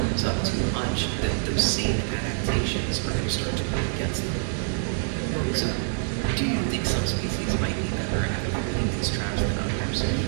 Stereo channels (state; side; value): silent; left; digital silence